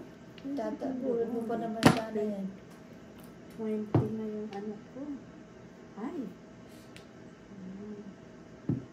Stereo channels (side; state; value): both; identical; correlation 1.00